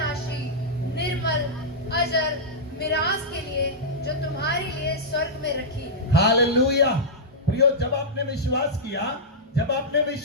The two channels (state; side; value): normal; both; correlation -0.11